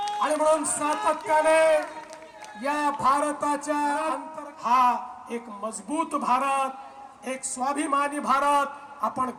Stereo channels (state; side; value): identical; both; correlation 1.00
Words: आणि म्हणून सातत्याने या भारताच्या हा एक मजबूत भारत, एक स्वाभिमानी भारत आपण